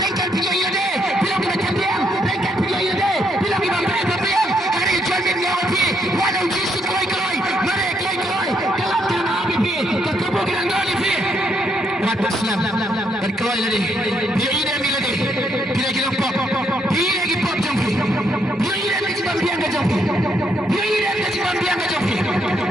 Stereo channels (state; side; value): normal; both; correlation 0.74